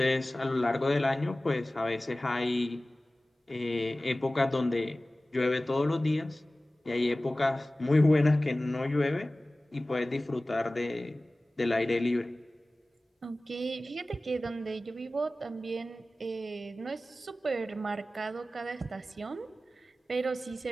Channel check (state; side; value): normal; both; correlation 0.97